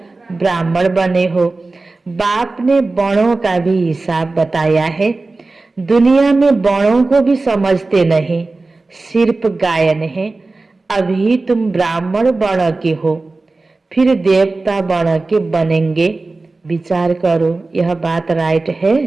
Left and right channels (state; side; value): quieter; left; 3.4 dB